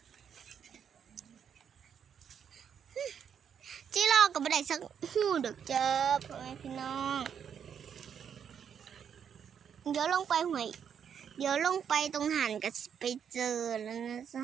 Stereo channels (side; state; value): left; quieter; 7.9 dB